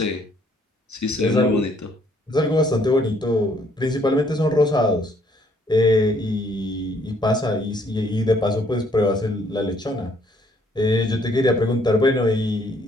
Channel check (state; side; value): normal; both; correlation 0.66